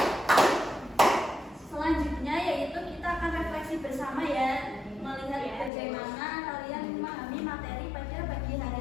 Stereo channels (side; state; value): right; drops out; at 5.7 s